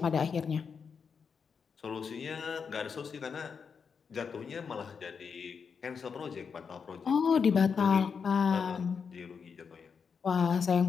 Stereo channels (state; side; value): quieter; right; 6.1 dB